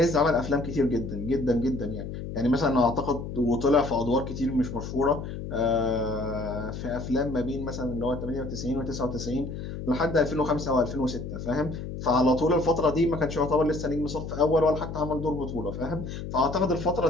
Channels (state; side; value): noise; left; hum, 7 dB below the sound